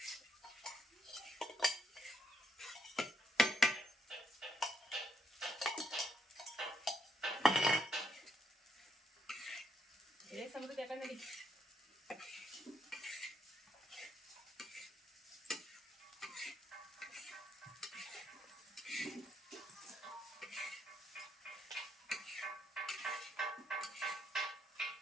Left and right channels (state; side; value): normal; both; correlation 0.75